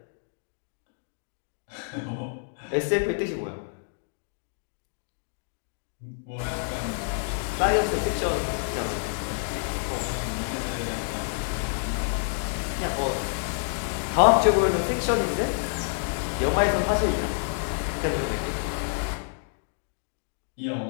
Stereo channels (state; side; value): silent; right; digital silence